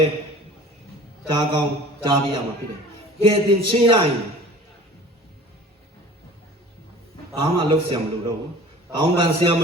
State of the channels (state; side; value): normal; both; correlation 0.44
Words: ည်းကြားကောင်းကြားပြရမှာဖြစ်တယ်ကဲတင်ချင်းရရင်ဘာမှလုပ်ဆရာမလို့တော့ဘူးတောင်းပန်ဆရာမ